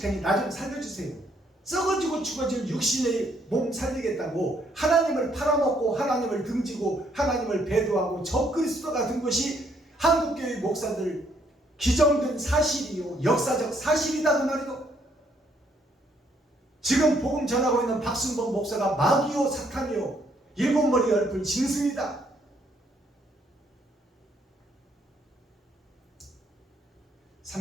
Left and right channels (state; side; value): normal; both; correlation 0.69